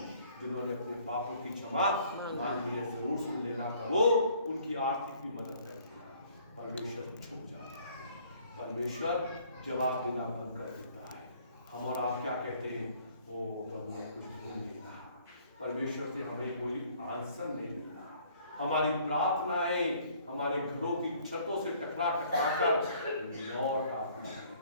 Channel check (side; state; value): both; inverted; correlation -0.59